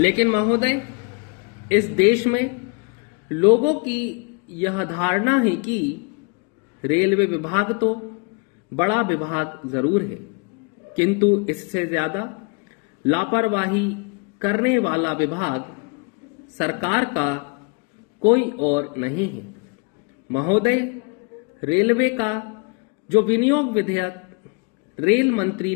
महोदय, इस देश में लोगों की यह धारणा है कि रेलवे विभाग तो बड़ा विभाग जरूर है, किंतु इससे ज्यादा लापरवाही करने वाला विभाग सरकार का कोई और नहीं है। महोदय, रेलवे का जो विनियोग विधेयक रेल मंत्री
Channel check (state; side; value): quieter; right; 33.4 dB